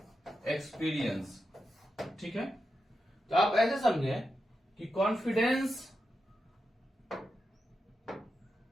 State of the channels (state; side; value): normal; both; correlation 0.88